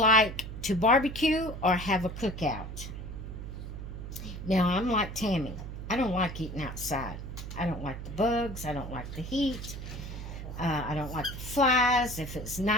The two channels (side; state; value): right; noise; hum, 8 dB below the sound